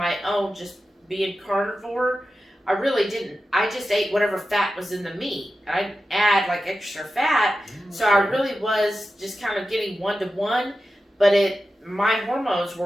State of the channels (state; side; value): normal; both; correlation 0.92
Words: own, just being carnivore, I really didn't. I just ate whatever fat was in the meat. I didn't add like extra fat. So I really was just kind of getting 1-to-1, but my hormones